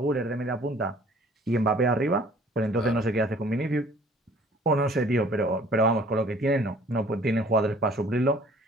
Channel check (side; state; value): both; normal; correlation 0.54